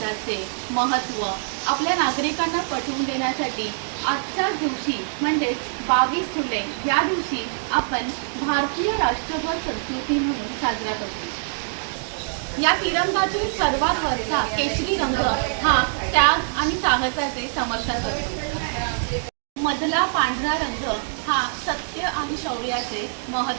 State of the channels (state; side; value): silent; left; digital silence